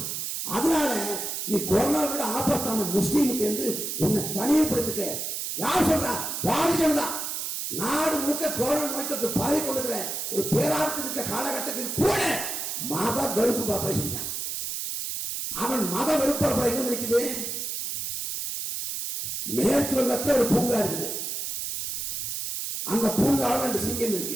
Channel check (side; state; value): right; noise; hiss, 4 dB below the sound